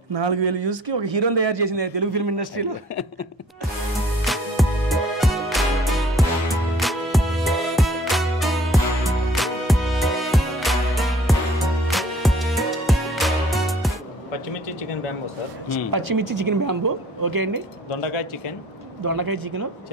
4,000 వ్యూస్ కి ఒక హీరోని తయారు చేసింది తెలుగు ఫిల్మ్ ఇండస్ట్రీలో. పచ్చిమిర్చి చికెన్ బ్యాంబో సార్. పచ్చిమిర్చి చికెన్ బ్యాంబో ఓకే అండి. దొండకాయ చికెన్,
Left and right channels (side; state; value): both; normal; correlation 0.55